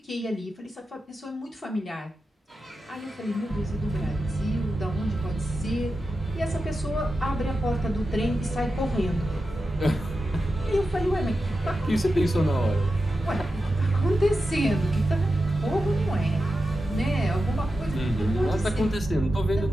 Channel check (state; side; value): normal; both; correlation 0.91